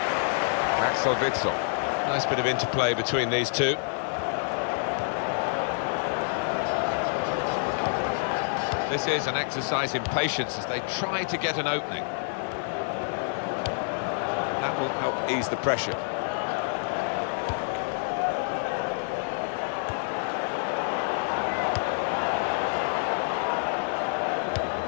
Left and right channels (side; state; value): right; silent; digital silence